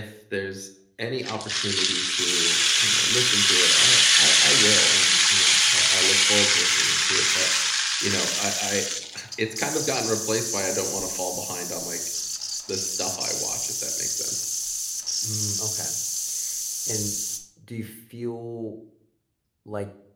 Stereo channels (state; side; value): identical; both; correlation 1.00